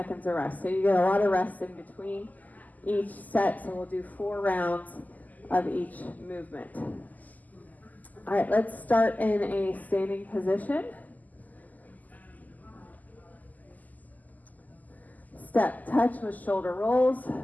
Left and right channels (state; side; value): late; right; 0.080 ms